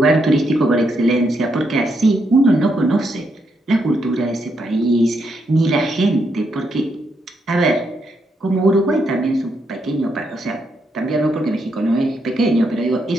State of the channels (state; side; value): normal; both; correlation 0.78